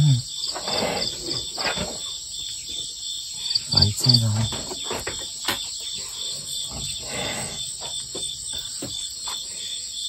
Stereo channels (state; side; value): identical; both; correlation 1.00